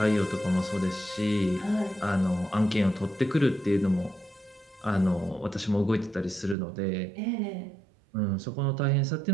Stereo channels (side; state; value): left; drops out; at 6.6 s